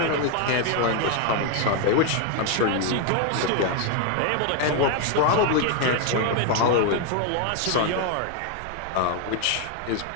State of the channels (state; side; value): different; both; correlation 0.01